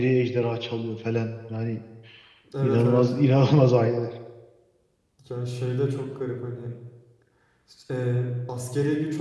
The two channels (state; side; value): identical; both; correlation 1.00